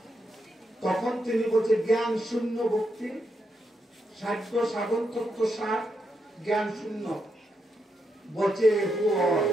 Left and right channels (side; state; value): both; normal; correlation 0.82